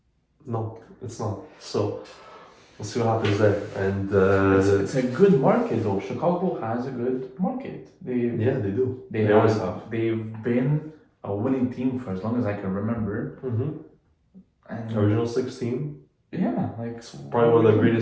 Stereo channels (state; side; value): identical; both; correlation 1.00